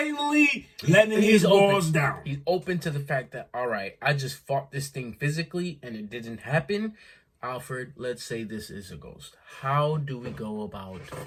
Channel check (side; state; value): both; identical; correlation 1.00